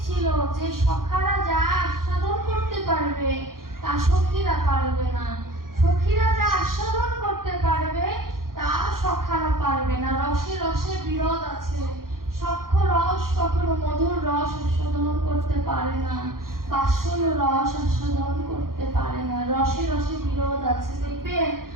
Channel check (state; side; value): late; left; 0.92 ms